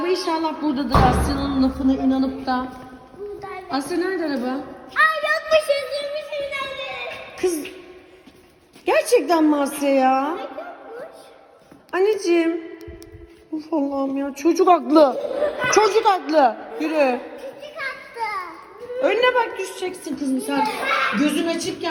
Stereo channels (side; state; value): both; identical; correlation 1.00